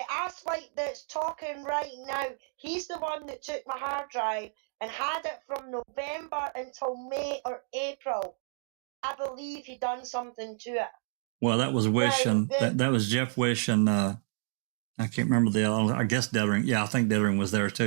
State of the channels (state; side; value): silent; left; 58 dB below the other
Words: asswipe that's talking right now, he's the one that took my hard drive and had it from November until May or April. I believe he done something to it. Well, that was Wish, and that was Jeff Wish, and I can't remember the other. I guess Dettering. Yeah, I think Dettering was there